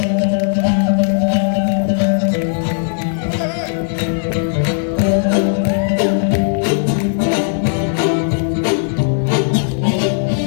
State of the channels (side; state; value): right; silent; digital silence